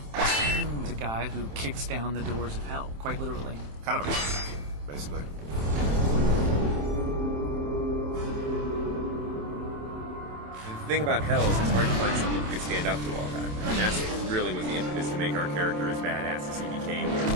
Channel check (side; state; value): left; late; 27 ms